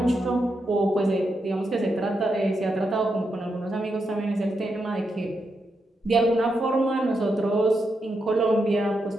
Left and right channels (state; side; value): normal; both; correlation 0.84